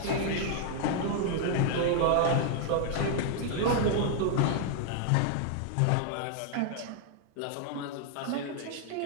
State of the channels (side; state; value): both; different; correlation 0.00